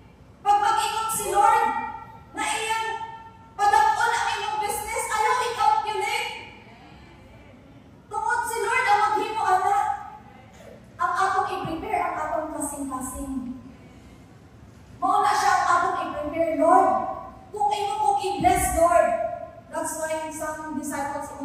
Pag mag-ingon si Lord, na iyang padakon ang iyong business, ayaw i-calculate. Tungod si Lord ang maghimo ana. Ang atong i-prepare, ang atong kasing-kasing. Mauna siya ang atong i-prepare, Lord. Kung imo kong i-bless, Lord. That's why some disciples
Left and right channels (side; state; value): both; identical; correlation 1.00